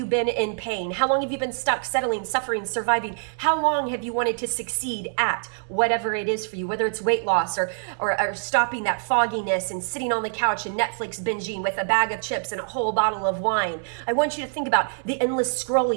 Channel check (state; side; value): silent; left; digital silence